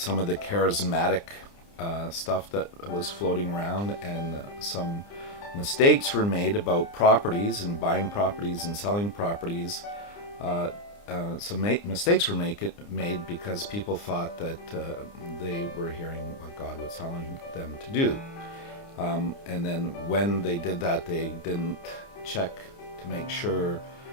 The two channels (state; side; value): late; right; 29 ms